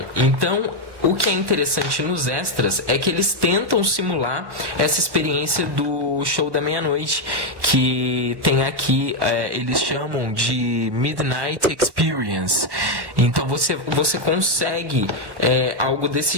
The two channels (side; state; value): left; late; 1.1 ms